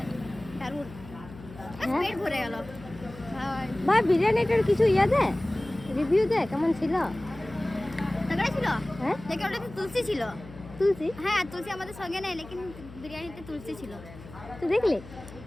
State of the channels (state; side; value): noise; left; hum, 17 dB below the sound